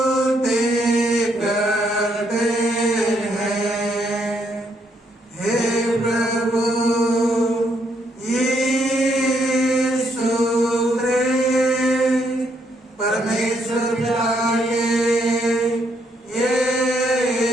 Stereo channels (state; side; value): normal; both; correlation 0.74